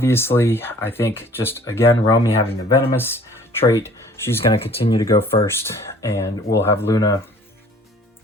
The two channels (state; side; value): normal; both; correlation 0.53